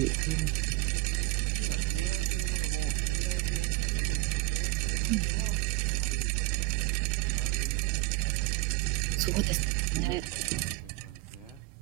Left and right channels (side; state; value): left; quieter; 21.0 dB